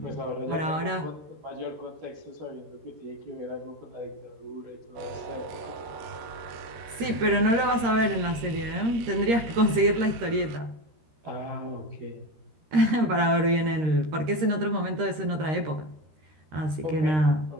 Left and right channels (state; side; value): late; left; 13 ms